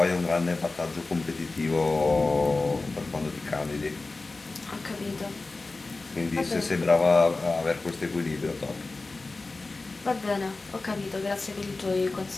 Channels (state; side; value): quieter; right; 3.5 dB